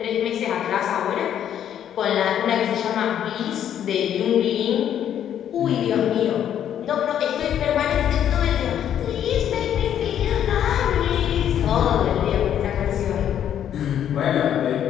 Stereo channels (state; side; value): quieter; right; 10.0 dB